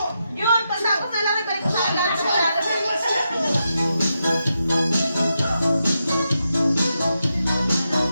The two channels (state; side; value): inverted; both; correlation -0.85